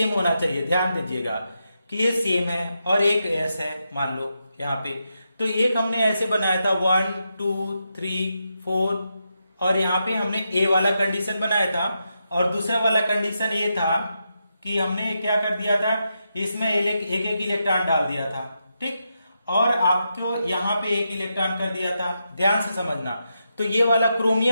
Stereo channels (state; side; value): inverted; both; correlation -0.85